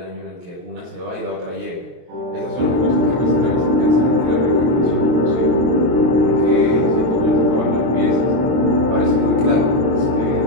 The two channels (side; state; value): left; late; 23 ms